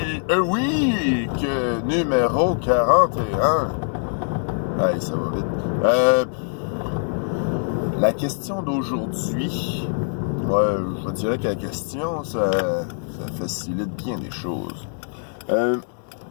Week numéro 41. Hey, ça va vite. La question d'aujourd'hui, je dirais que la question, ça facilite bien les choses.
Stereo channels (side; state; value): right; silent; digital silence